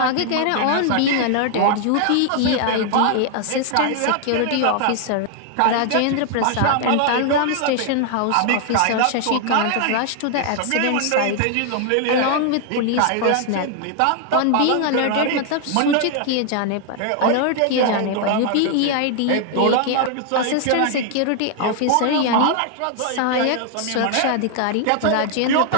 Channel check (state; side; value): different; both; correlation 0.00